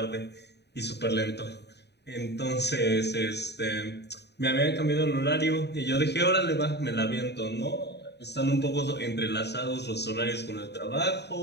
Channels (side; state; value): right; late; 0.49 ms